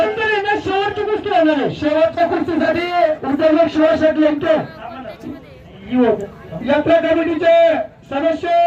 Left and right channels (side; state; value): both; identical; correlation 1.00